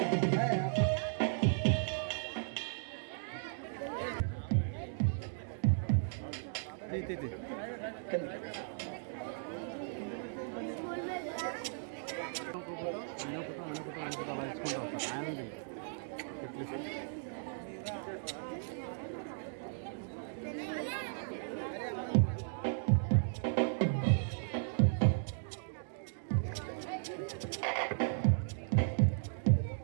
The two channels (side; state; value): left; silent; digital silence